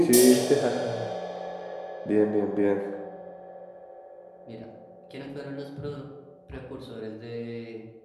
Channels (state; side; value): identical; both; correlation 1.00